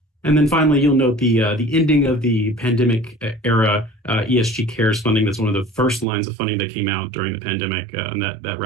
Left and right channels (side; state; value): left; drops out; at 6.1 s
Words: And then finally, you'll note the ending of the pandemic era ESG Cares funding. That's one of the first lines of funding that came out during the pandemic, and that